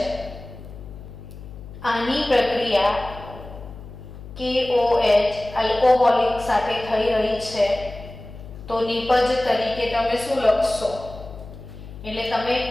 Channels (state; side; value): noise; left; hum, 14 dB below the sound